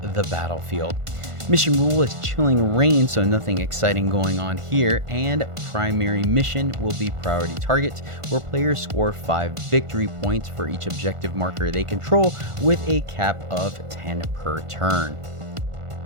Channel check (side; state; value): left; late; 1.5 ms